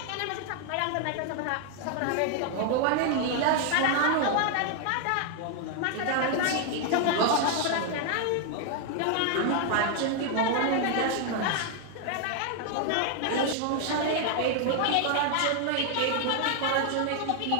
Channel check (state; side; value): different; both; correlation 0.00